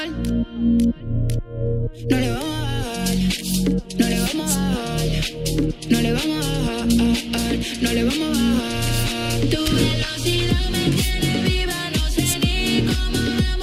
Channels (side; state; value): both; identical; correlation 1.00